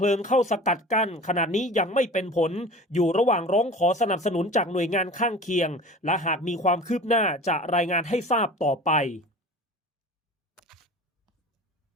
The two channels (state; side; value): normal; both; correlation 0.39